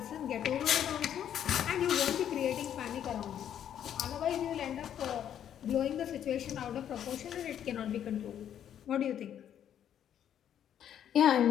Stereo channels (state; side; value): quieter; right; 9.9 dB